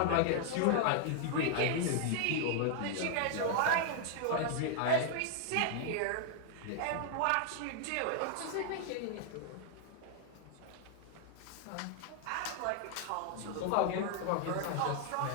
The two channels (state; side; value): different; both; correlation 0.00